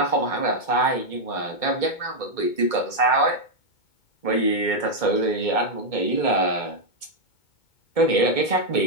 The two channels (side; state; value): right; late; 2.2 ms